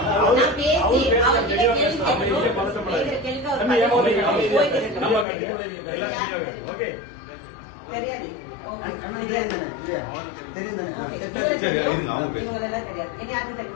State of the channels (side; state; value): right; drops out; at 5.2 s